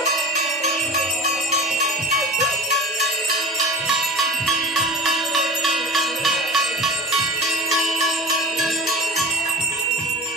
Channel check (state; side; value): normal; both; correlation 0.34